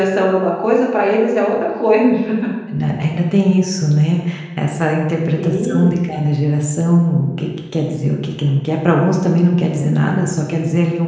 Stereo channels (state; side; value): identical; both; correlation 1.00